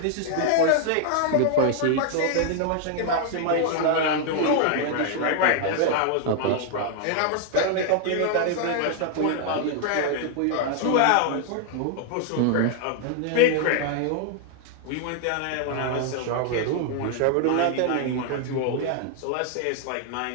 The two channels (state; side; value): different; both; correlation 0.00